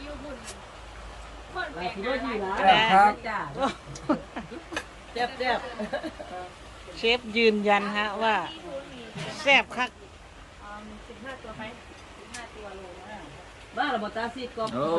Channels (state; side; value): identical; both; correlation 1.00